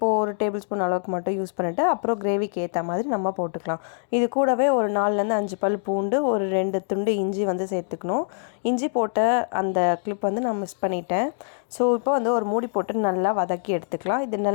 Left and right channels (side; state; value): right; silent; digital silence